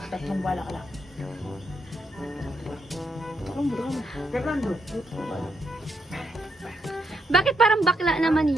Tatlong bala ka lang. Fernando. Bakit parang bakla naman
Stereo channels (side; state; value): both; normal; correlation 0.79